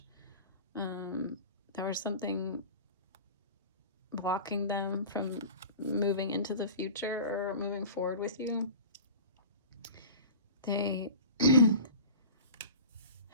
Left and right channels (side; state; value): both; inverted; correlation -0.38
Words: There was something blocking them from moving into the future or moving forward with you. They